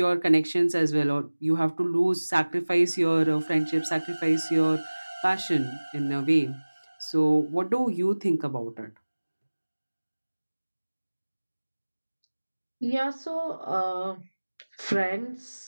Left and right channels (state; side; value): inverted; both; correlation -1.00